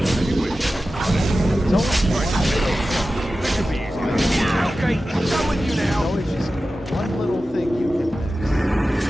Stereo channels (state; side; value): normal; both; correlation 0.94